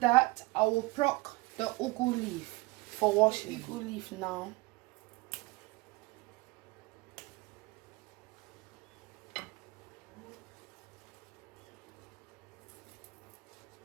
I will pluck the ugu leaf for washing. Ugu leaf now.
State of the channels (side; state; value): left; quieter; 22.9 dB